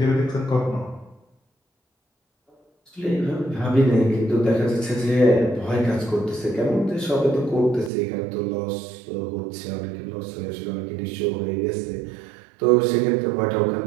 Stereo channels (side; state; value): left; drops out; at 7.9 s